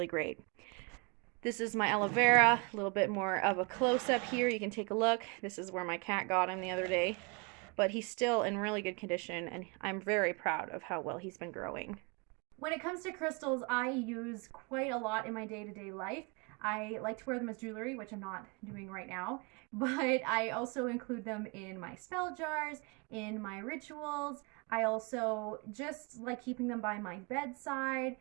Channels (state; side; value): quieter; left; 30.8 dB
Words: great. This is my aloe vera, a little bit more of a close-up here. You can take a look. This is where my cat got him the other day. But he's still in really good condition, and I'm very proud of how well he's been growing. When it comes to crystals, I use quite a lot in my day-to-day life. I like to wear them as jewelry, which I'm not doing right now, but I also include them in my spell jars, in my rituals. I also just like keeping them by my bedside,